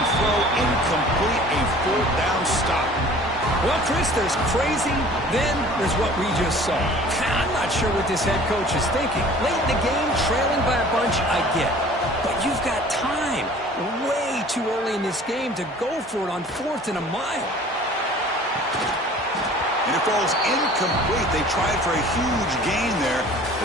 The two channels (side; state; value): both; normal; correlation 0.48